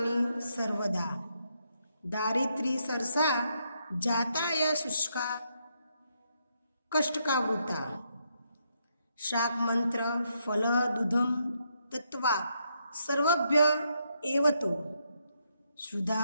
सर्वदा दारिद्री सरसा जाताय शुष्का कष्टकावृता शाक मंत्र फल दूधम तत्वा सर्वभ्य एवतो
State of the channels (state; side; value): inverted; both; correlation -0.77